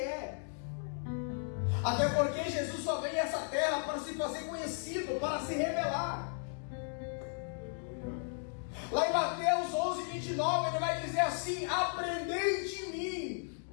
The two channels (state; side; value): silent; right; 54 dB below the other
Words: Até porque Jesus só veio a essa terra para se fazer conhecido, para se revelar. Lá em Mateus 11, 29, ele vai dizer assim: aprendei de mim,